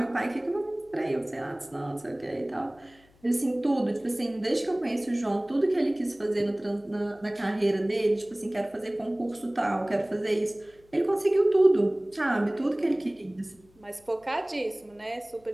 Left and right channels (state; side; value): noise; left; hum, 30 dB below the sound